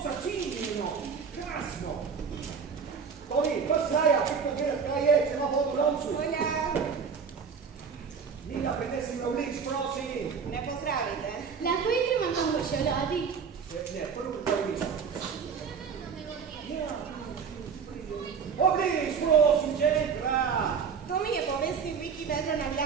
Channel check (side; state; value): left; quieter; 6.2 dB